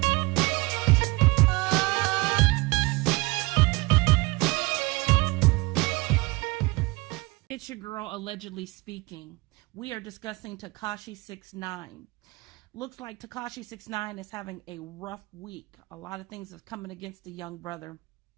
It's your girl allegedly speaking. We are discussing Tekashi69. Looks like Tekashi69 is having a rough week. A lot of things are coming against the young brother.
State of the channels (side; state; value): left; quieter; 23.9 dB